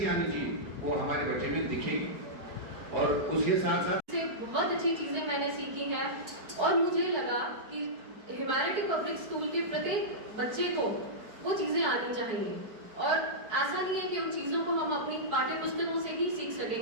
आनी चाहिए, वो हमारे बच्चे में दिखेगी। और उसके साथ साथ से बहुत अच्छी चीजें मैंने सीखी हैं और मुझे लगा कि ह्यूमैनिटी पब्लिक स्कूल के प्रत्येक बच्चे को वो चीजें आनी चाहिए। और ऐसा नहीं है कि उन चीजों को हम अपनी पाठ्य पुस्तकों से ही सीख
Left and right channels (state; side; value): late; left; 4.7 ms